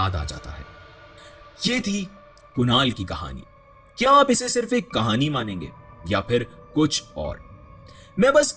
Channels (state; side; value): identical; both; correlation 1.00